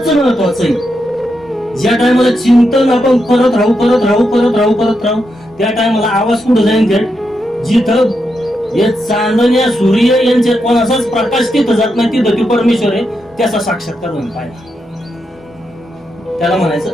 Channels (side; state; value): both; normal; correlation 0.84